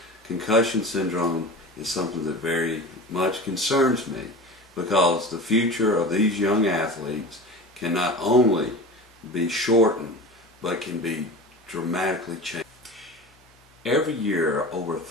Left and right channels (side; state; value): both; normal; correlation 0.33